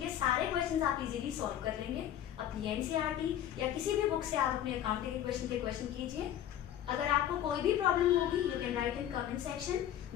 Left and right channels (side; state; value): right; quieter; 11.0 dB